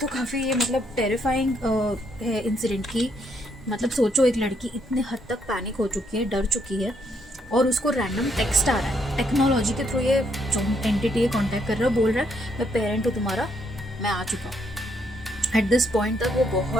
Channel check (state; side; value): normal; both; correlation 0.73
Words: काफ़ी ये मतलब टेरिफाइंग है इंसिडेंट की। मतलब सोचो, एक लड़की इतने हद तक पैनिक हो चुकी है, डर चुकी है, और उसको रैंडम टेक्स्ट आ रहा है टेक्नोलॉजी के थ्रू। ये जो एंटिटी है कॉन्टैक्ट कर रहा है, बोल रहा है मैं पेरेंट हूँ तुम्हारा, मैं आ चुका हूँ। एट दिस पॉइंट तक वो